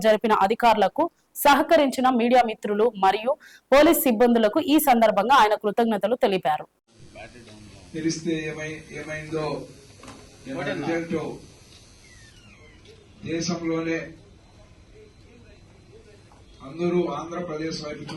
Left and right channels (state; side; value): identical; both; correlation 1.00